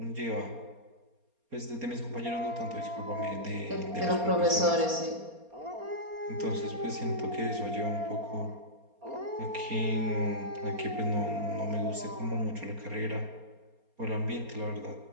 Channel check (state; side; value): late; left; 4.3 ms